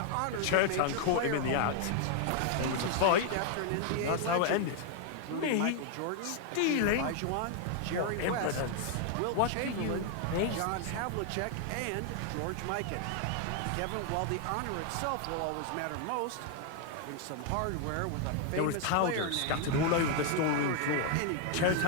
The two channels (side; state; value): both; different; correlation 0.00